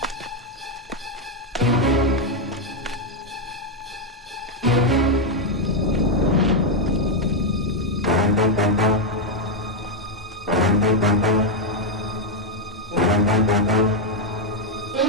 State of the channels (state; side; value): normal; both; correlation 0.01